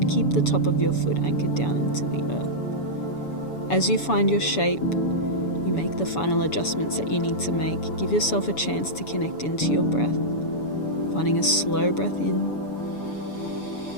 keep the top of your foot anchored down into the earth. As you find your shape, you make the final adjustments that you need to make. Give yourself a chance to connect into your breath, finding a slow breath in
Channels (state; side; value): late; right; 7.0 ms